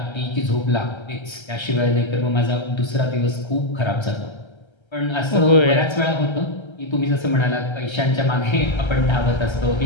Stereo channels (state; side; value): late; right; 1.3 ms